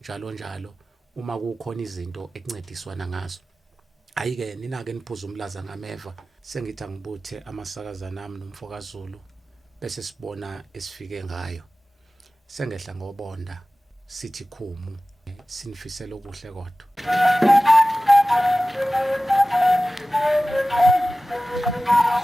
uma kukhona izinto ekuncediswana ngazo ayike nina ke niphuza umlaza ngameva sengithi angibuthe amasakaza nami nomfoka Zulu bese sibona esifike ngayo sengehla ngobonda sithi khumu sinifisela okuhle kodwa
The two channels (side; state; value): both; normal; correlation 0.97